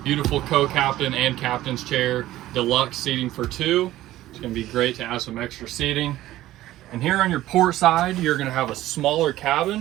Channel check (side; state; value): left; quieter; 15.1 dB